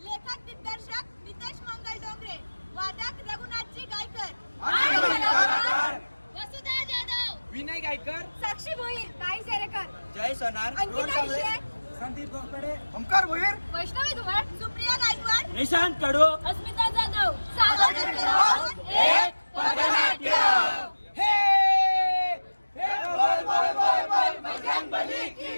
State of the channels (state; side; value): inverted; both; correlation -1.00